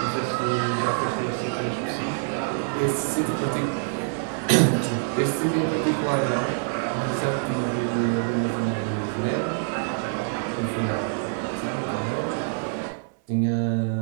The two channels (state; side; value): silent; left; 61 dB below the other